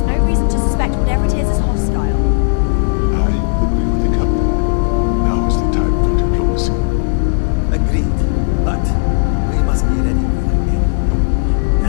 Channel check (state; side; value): silent; right; digital silence